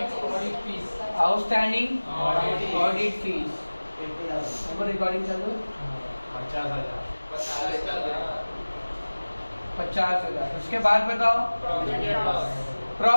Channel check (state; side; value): inverted; both; correlation -1.00